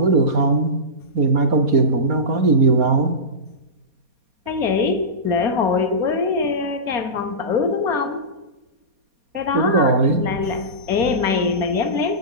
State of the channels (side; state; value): left; late; 4.2 ms